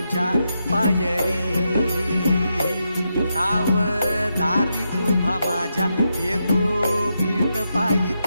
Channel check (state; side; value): inverted; both; correlation -0.85